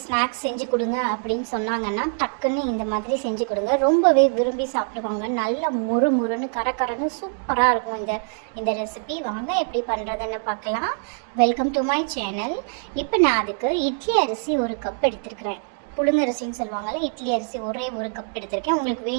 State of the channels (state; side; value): silent; left; 58 dB below the other